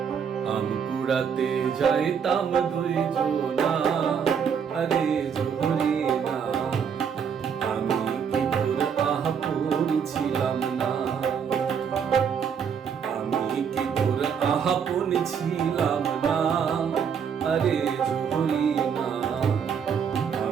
আম কুড়াতে যাইতাম দুইজনা। আরে জোহরে না, আমি কি তোর আপন ছিলাম না? আমি কি তোর আপন ছিলাম না? আরে জোহরে না,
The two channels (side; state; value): left; quieter; 7.2 dB